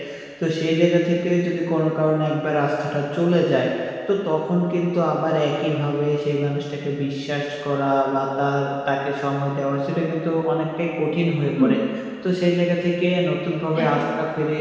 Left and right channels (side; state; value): both; identical; correlation 1.00